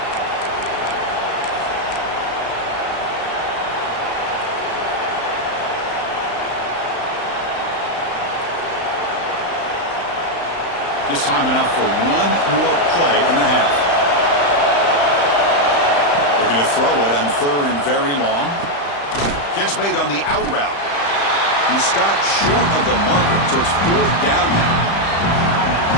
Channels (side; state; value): right; late; 35 ms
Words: Just time enough for one more play in the half. Looking to throw it on third and very long. Catch made on the out route. He stopped short of the marker, so it's fourth down